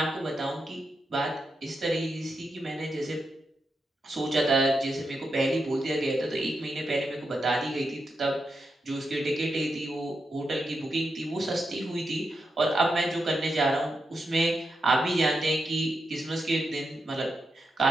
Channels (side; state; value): both; normal; correlation 0.86